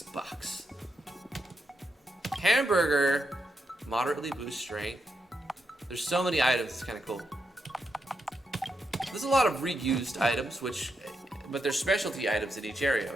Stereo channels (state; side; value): normal; both; correlation 0.83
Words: box. Hamburger, moderately boost strength. There's so many items, it's kind of cool. There's a lot of reused items, but they're specialty items in each area,